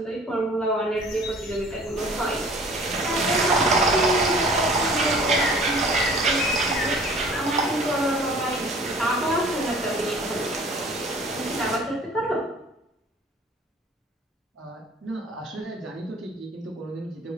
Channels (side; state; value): both; normal; correlation 0.49